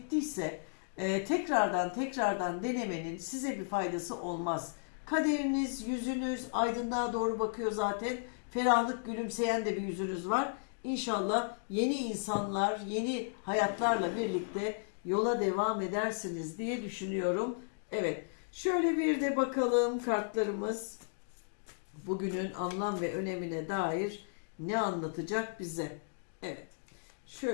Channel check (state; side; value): silent; right; digital silence